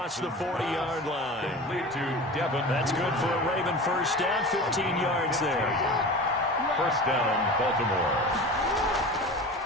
the 40-yard line. That's good for a Raven first down, 15 yards there. First down, Baltimore.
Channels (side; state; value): both; normal; correlation 0.34